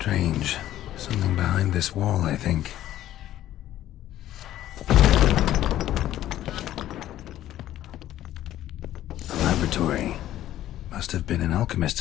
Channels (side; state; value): right; quieter; 13.1 dB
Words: Strange. Something behind this wall, I think. A laboratory. Must have been an